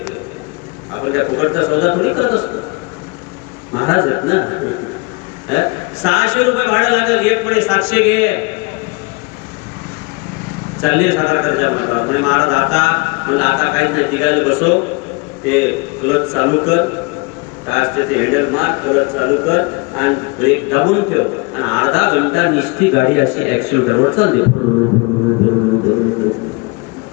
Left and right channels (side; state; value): right; quieter; 28.2 dB